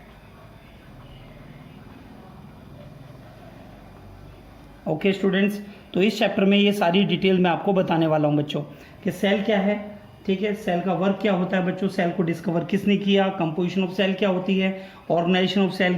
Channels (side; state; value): both; identical; correlation 1.00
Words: ओके स्टूडेंट्स, तो इस चैप्टर में ये सारी डिटेल मैं आपको बताने वाला हूँ बच्चों कि सेल क्या है. ठीक है, सेल का वर्क क्या होता है बच्चों, सेल को डिस्कवर किसने किया, कंपोजिशन ऑफ सेल क्या होती है, ऑर्गेनाइजेशन ऑफ सेल